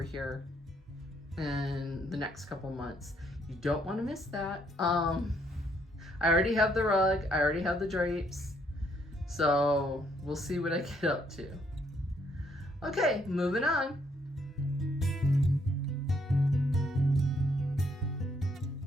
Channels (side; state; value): both; normal; correlation 0.70